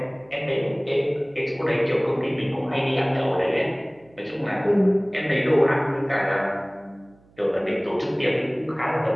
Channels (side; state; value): right; noise; hum, 30 dB below the sound